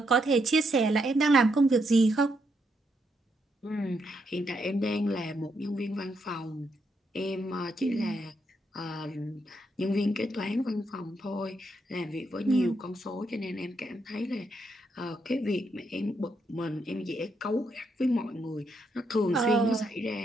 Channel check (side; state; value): both; normal; correlation 0.78